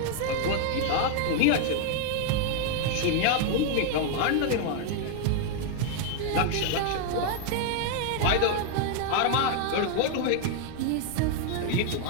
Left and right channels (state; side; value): different; both; correlation 0.00